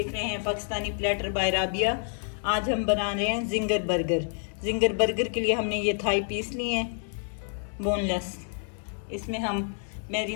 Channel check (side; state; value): right; silent; 59 dB below the other